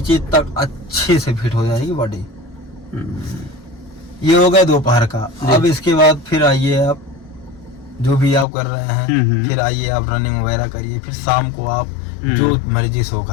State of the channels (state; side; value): drops out; right; at 8.5 s